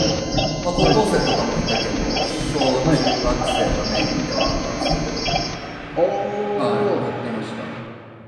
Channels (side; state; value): both; identical; correlation 1.00